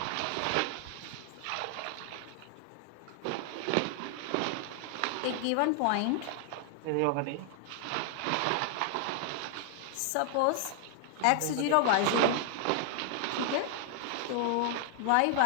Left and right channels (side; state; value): both; different; correlation 0.00